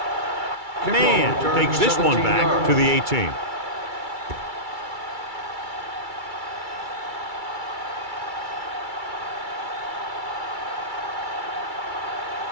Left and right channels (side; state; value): left; late; 2.3 ms